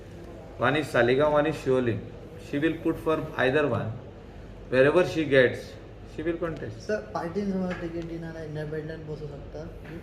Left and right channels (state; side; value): identical; both; correlation 1.00